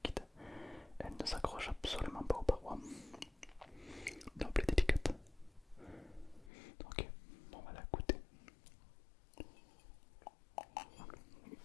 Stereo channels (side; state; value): right; drops out; at 6.5 s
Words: Elle ne s'accroche absolument pas aux parois. Donc elle est délicate. Ok, on va la goûter.